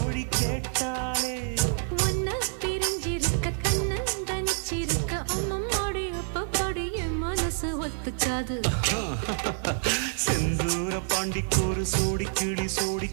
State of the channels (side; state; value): left; silent; digital silence